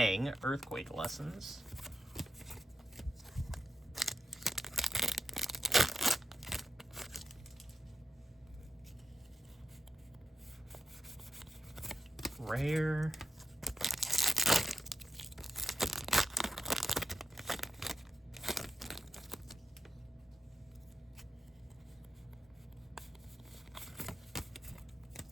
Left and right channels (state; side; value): normal; both; correlation 0.86